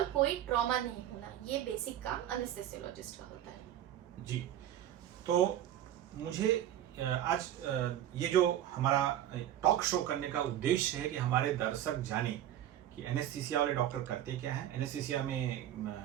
कोई ट्रॉमा नहीं होना, ये बेसिक काम एनेस्थेसियोलॉजिस्ट का होता है। जी, तो मुझे आज ये जो हमारा टॉक शो करने का उद्देश्य है कि हमारे दर्शक जाने कि एनेस्थीसिया वाले डॉक्टर करते क्या है, एनेस्थीसिया में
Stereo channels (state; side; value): quieter; left; 11.6 dB